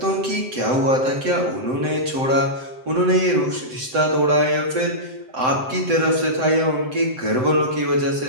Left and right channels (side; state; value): left; late; 7.8 ms